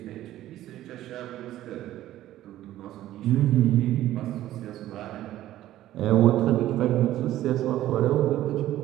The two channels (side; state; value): left; quieter; 13.9 dB